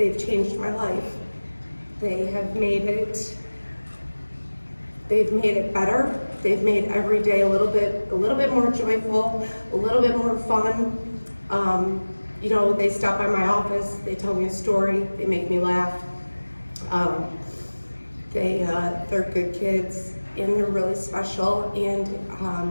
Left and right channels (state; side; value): inverted; both; correlation -1.00